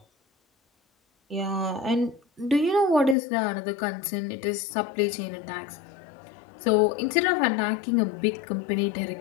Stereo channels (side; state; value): right; drops out; at 3.2 s